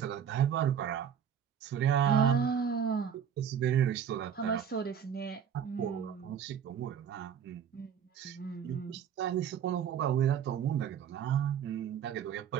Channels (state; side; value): quieter; left; 8.3 dB